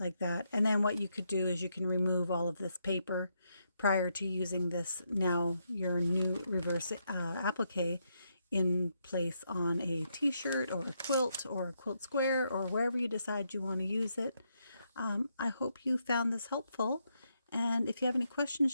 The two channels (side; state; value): both; inverted; correlation -0.79